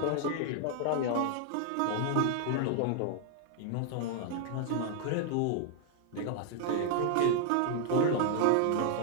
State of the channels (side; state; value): both; different; correlation 0.00